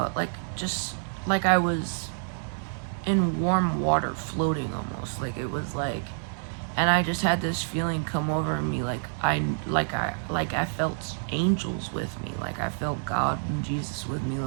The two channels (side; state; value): left; silent; digital silence